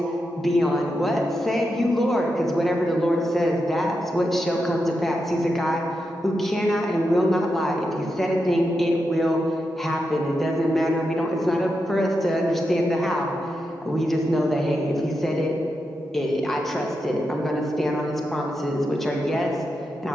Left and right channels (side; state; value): both; normal; correlation 0.87